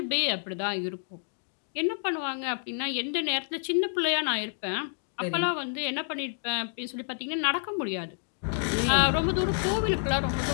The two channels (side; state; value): right; silent; digital silence